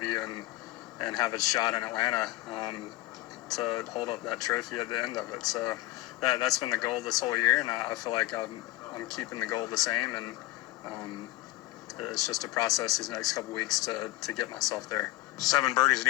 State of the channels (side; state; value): right; quieter; 18.1 dB